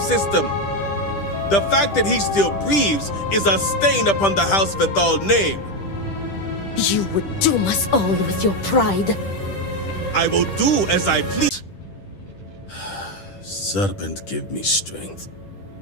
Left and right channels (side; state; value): right; late; 10 ms